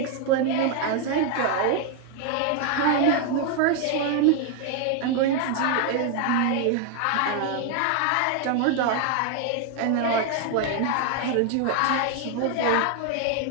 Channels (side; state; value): both; different; correlation 0.00